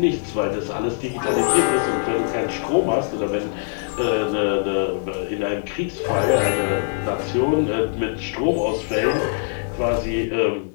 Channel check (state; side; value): silent; right; digital silence